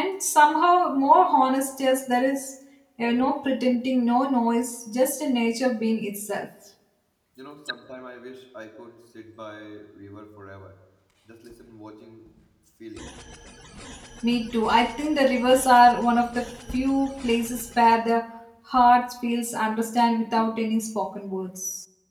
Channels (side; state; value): both; identical; correlation 1.00